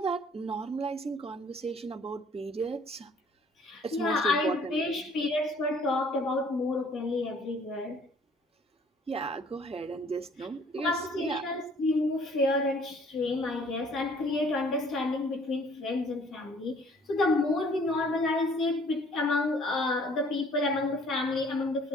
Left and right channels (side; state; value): both; normal; correlation 0.57